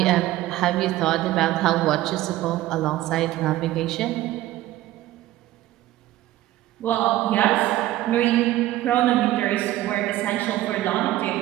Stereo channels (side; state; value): left; quieter; 15.3 dB